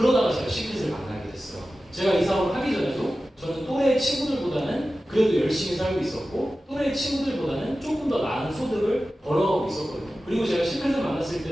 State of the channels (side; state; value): both; normal; correlation 0.94